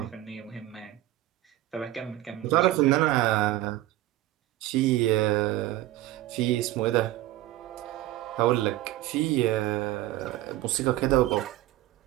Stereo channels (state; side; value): quieter; left; 15.4 dB